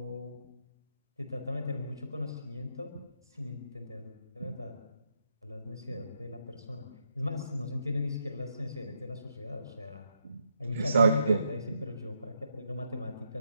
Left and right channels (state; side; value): inverted; both; correlation -0.79